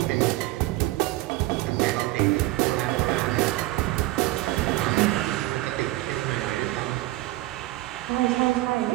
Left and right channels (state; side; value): quieter; left; 18.1 dB